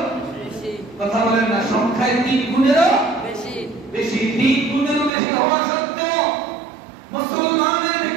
বেশি। কথা বলেন না? সংখ্যায় 3 গুণেরও বেশি, 3 গুণেরও বেশি হওয়া সত্ত্বেও মুসলমানদের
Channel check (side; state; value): left; drops out; at 5.1 s